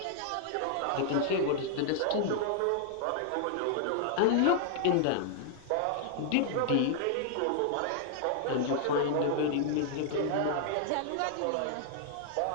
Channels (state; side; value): different; both; correlation -0.01